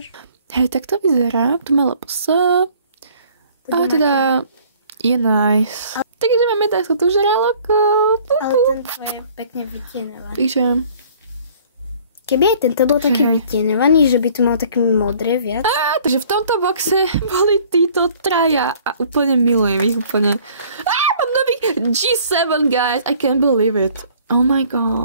Hej, tak to vyzerá. Tu má LPS. A teda je nice. Takže máme takto tu žraloko. Ale tento je pekne vytienovaný. Takže... Keby aj tento bol taký vytienovaný, že by tu mal také modré viac. Takže v tomto boxe boli títo traja a úplne milujem ich úplne. Mám nový G7, guys. I can't believe it. Oh my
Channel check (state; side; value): inverted; both; correlation -0.55